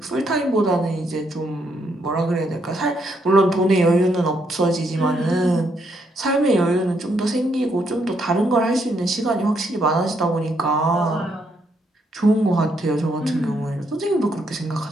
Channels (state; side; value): normal; both; correlation 0.75